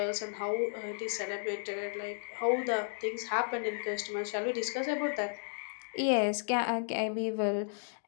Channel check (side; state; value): right; silent; digital silence